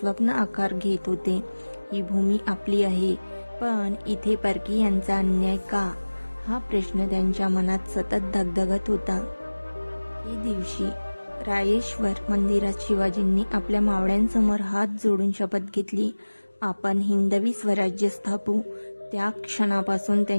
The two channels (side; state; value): both; inverted; correlation -1.00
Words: आकार घेत होते. ही भूमी आपली आहे, पण इथे परकीयांचा अन्याय का, हा प्रश्न त्यांच्या मनात सतत धगधगत होता. एके दिवशी रायेश्वर मंदिरात शिवाजींनी आपल्या मावळ्यांसमोर हात जोडून शपथ घेतली, आपण हिंदवी स्वराज्य स्थापू. त्या क्षणापासून